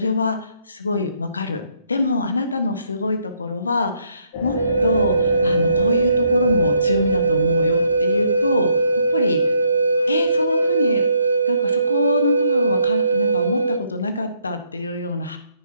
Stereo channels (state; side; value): inverted; both; correlation -0.72